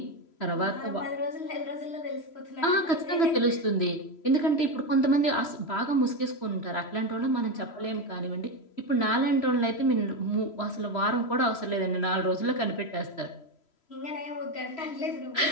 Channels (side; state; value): right; late; 3.0 ms